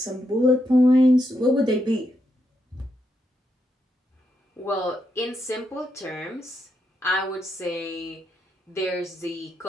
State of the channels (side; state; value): both; normal; correlation 0.81